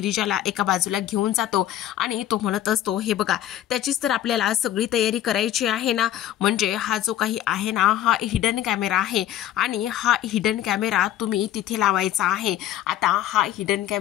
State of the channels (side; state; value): right; quieter; 12.1 dB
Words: एका बाजूला घेऊन जातो आणि तो म्हणत असतो, हे बघा, त्याचीच तर आपल्याला सगळी तयारी करायची आहे ना. म्हणजे हा जो काही आहे ना, हा हिडन कॅमेरा आहे आणि हा हिडन कॅमेरा तुम्ही तिथे लावायचा आहे. आता हा हिडन